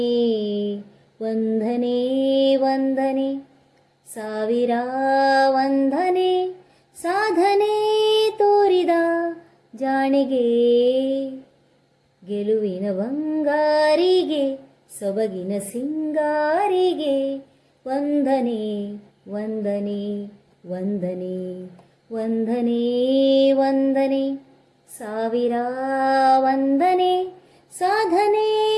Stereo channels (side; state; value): both; identical; correlation 1.00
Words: ವಂದನೆ ವಂದನೆ ಸಾವಿರ ವಂದನೆ ಸಾಧನೆ ತೋರಿದ ಜಾಣೆಗೆ, ಗೆಲುವಿನ ಬಂಗಾರಿಗೆ, ಸೊಬಗಿನ ಸಿಂಗಾರಿಗೆ ವಂದನೆ ವಂದನೆ ವಂದನೆ ವಂದನೆ ವಂದನೆ. ಸಾವಿರ ವಂದನೆ ಸಾಧನೆ